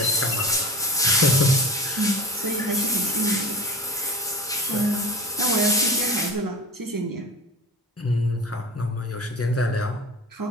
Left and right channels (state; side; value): normal; both; correlation 0.33